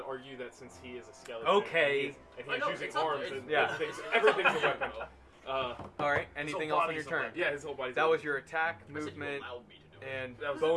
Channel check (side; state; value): both; identical; correlation 1.00